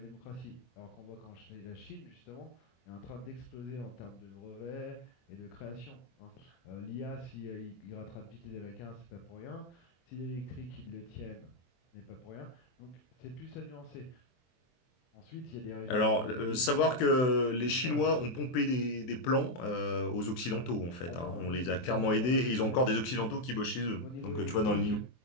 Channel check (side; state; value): right; late; 24 ms